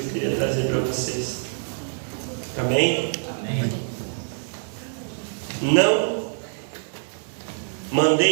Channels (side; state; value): left; silent; digital silence